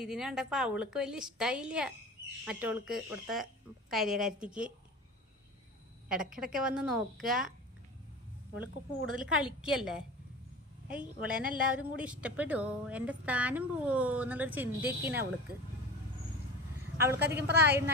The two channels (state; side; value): normal; both; correlation 0.33